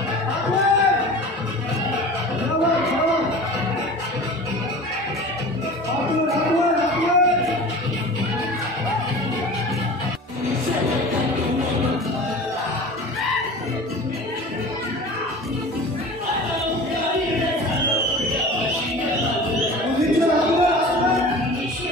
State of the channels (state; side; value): normal; both; correlation 0.38